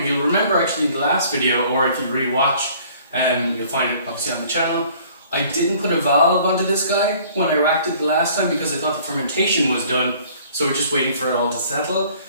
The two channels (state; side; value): inverted; both; correlation -0.54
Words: remember actually in the last video, or if you re-watch, you'll find it obviously on the channel. I didn't put a valve onto this guy when I racked it the last time because I thought the fermentation was done, so we're just waiting for it all to settle.